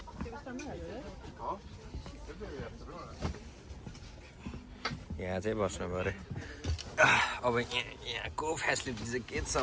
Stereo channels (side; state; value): both; identical; correlation 1.00